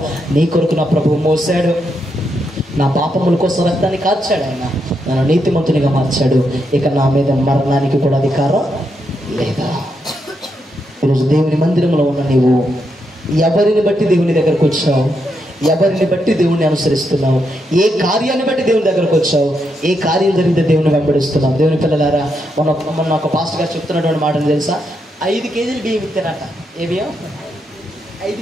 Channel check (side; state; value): both; normal; correlation 0.81